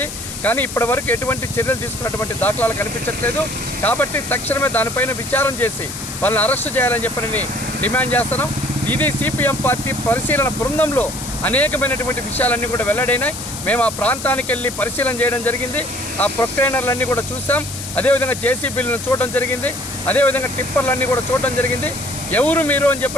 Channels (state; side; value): noise; left; hiss, 9 dB below the sound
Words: కానీ ఇప్పటి వరకు ఎటువంటి చర్యలు తీసుకున్నటువంటి దాఖలాలు కనిపించట్లేదు. కాబట్టి తక్షణమే దానిపైన విచారం చేసి వాళ్ళని అరెస్టు చేయాలని చెప్పి డిమాండ్ చేస్తున్నాం. ఇది సిపిఎం పార్టీ పరిశీలన బృందంలో అనేకమైనటువంటి విషయాలన్నీ కూడా వెల్లడైనాయి. మేము ఆ ప్రాంతానికి వెళ్ళి పరిశీలన చేయడం జరిగింది. ఆ ప్రొక్లైనర్లన్నీ కూడా చూసాం. అదేవిధంగా జేసీబీలను చూడడం జరిగింది. అదేవిధంగా టిప్పర్లన్నీ కూడా చూడడం జరిగింది. ఎవరు మీరు అని